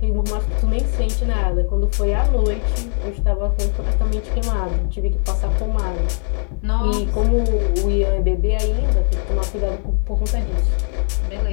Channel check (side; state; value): right; silent; 62 dB below the other